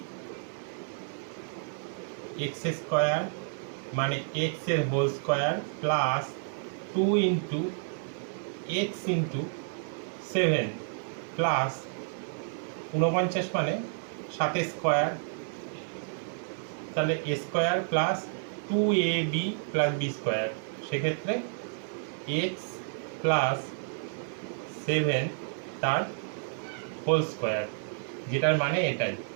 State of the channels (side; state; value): left; silent; digital silence